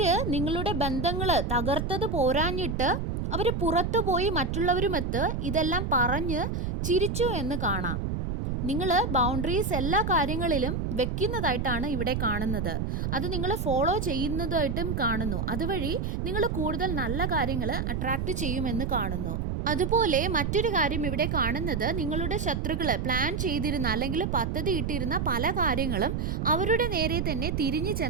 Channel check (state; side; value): noise; right; rumble, 1 dB below the sound